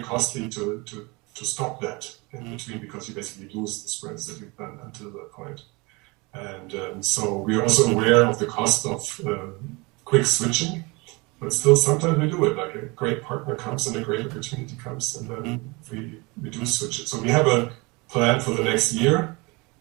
costly to stop that in between, because you basically lose the sprints that you've done until that point. And so we are also aware of the cost of quick switching. But still, sometimes we do it. Like a great partner comes and a great opportunity comes, and then we do switch it. So we have a plan for the next year,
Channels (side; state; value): left; quieter; 26.4 dB